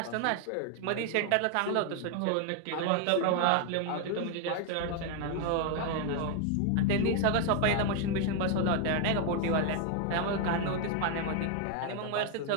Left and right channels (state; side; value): different; both; correlation 0.00